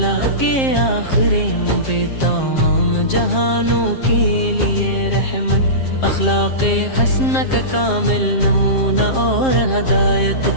کے آخری پہ تمام جہانوں کے لیے رحمت، اخلاق حسنہ کا کامل نمونہ اور ہدایت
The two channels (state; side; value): late; right; 7.5 ms